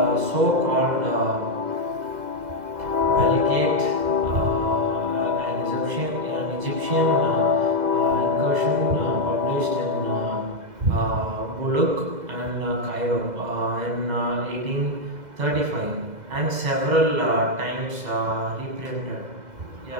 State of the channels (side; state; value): left; late; 2.0 ms